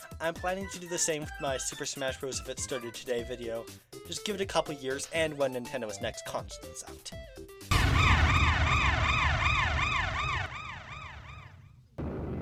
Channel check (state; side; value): identical; both; correlation 1.00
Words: I'm planning to do the same with my Super Smash Bros. If it started today video. Just give it a couple years and when Nintendo's next console is out.